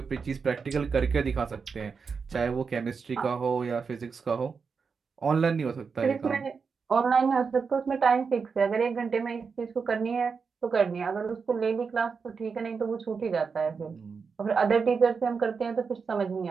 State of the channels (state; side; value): quieter; left; 5.4 dB